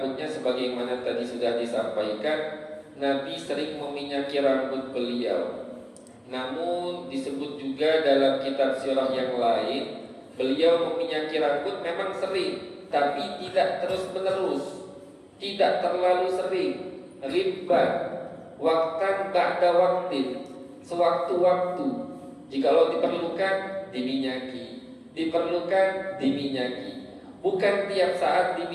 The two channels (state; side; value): identical; both; correlation 1.00